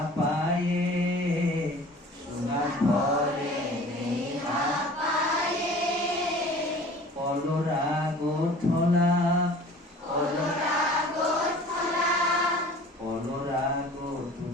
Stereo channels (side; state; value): both; normal; correlation 0.45